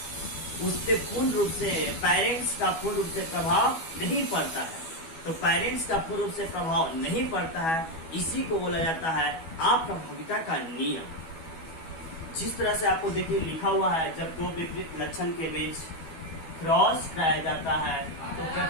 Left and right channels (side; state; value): right; late; 12 ms